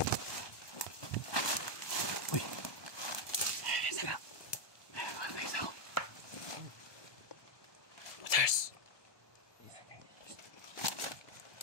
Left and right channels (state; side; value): late; right; 1.2 ms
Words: Uy. Saka. Kuha na isa ako. Cheers.